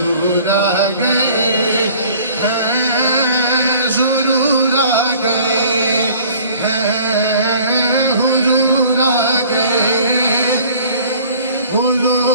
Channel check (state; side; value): inverted; both; correlation -0.51